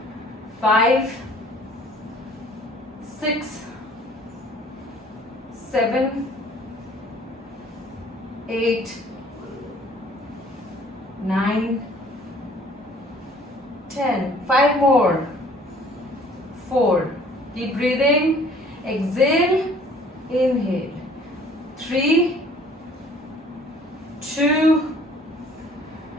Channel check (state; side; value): normal; both; correlation 0.54